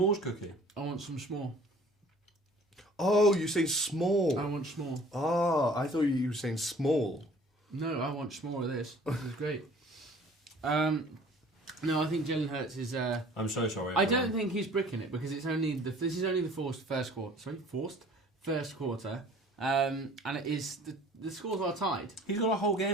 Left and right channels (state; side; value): normal; both; correlation 0.51